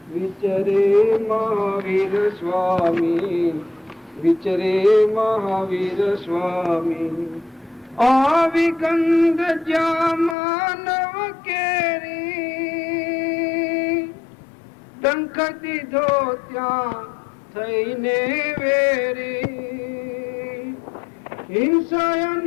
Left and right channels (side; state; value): right; drops out; at 10.4 s